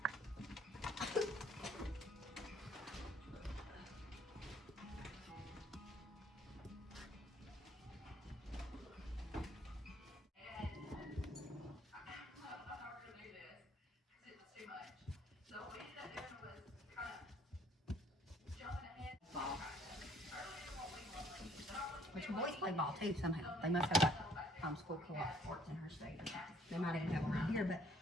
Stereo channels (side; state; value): both; normal; correlation 0.61